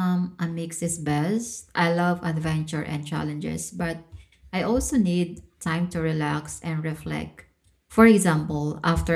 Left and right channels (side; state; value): both; identical; correlation 1.00